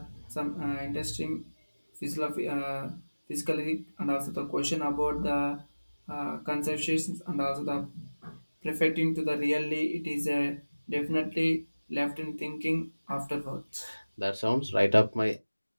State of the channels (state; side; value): inverted; both; correlation -1.00